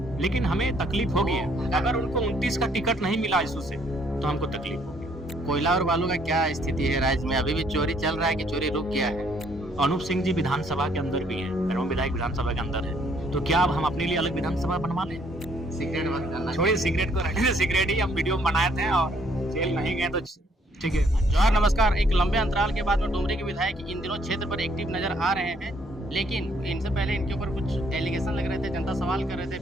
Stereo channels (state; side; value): normal; both; correlation 0.66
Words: लेकिन हमें तकलीफ होगी है अगर उनको 29 का टिकट नहीं मिला इसू से, तो हमको तकलीफ होगी। कोयला और बालू का क्या स्थिति है राज्य में? अभी भी चोरी चल रहा है कि चोरी रुक गया है? अनूप सिंह जी विधानसभा के अंदर भी हैं, एवं विधायक विधानसभा के अंदर है, तो क्या अब हम अपने लिए अलग विधानसभा बनवा लें? सिगरेट बंद करना छोड़िए, सिगरेट को रखने, सिगरेट ही हम वीडियो में बनाए थे और जेल नहीं गए तो ठीक है। जोहार, नमस्कार। एक लंबे अंतराल के बाद में डुमरी के विधायक इन दिनों क्षेत्र पर एक्टिव नजर आ रहे हैं, लेकिन इनसे पहले इनके ऊपर कुछ एलिगेशन लग रहे थे, जनता सवाल कर रहे थे,